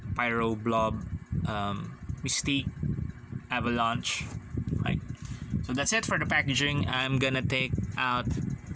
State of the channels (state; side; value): identical; both; correlation 1.00